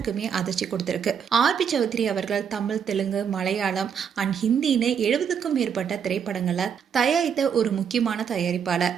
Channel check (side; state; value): left; quieter; 7.5 dB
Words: அதிர்ச்சி கொடுத்திருக்கு. ஆர்பி சௌத்ரி அவர்கள் தமிழ், தெலுங்கு, மலையாளம் அண்ட் ஹிந்தின்னு 70க்கும் மேற்பட்ட திரைப்படங்களை தயாரித்த ஒரு முக்கியமான தயாரிப்பாளர்.